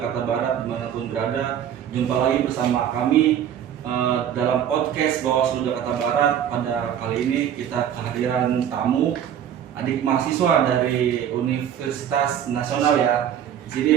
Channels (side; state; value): left; quieter; 9.6 dB